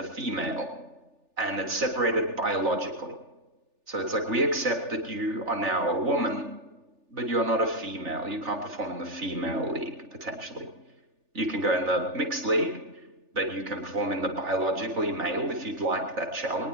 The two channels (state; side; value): late; left; 3.4 ms